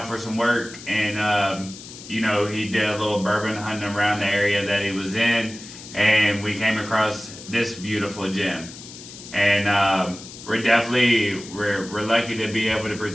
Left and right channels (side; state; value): left; noise; hiss, 15 dB below the sound